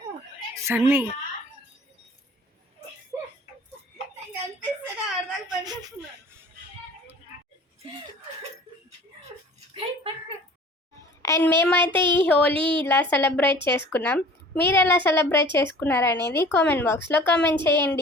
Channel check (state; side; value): normal; both; correlation 0.46